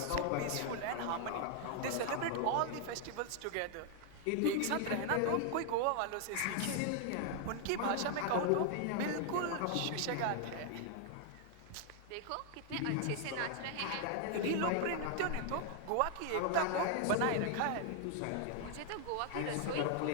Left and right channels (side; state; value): both; different; correlation 0.00